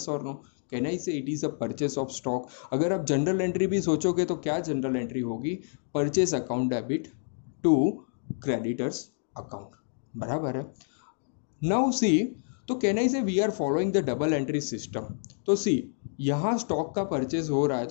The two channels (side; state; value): right; silent; digital silence